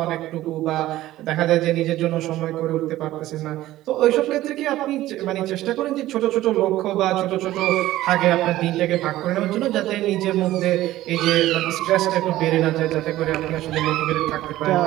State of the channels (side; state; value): left; quieter; 15.3 dB